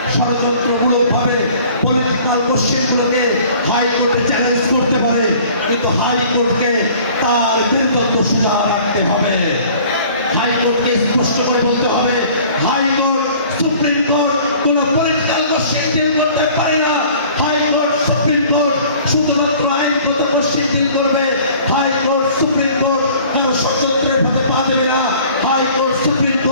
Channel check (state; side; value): inverted; both; correlation -0.50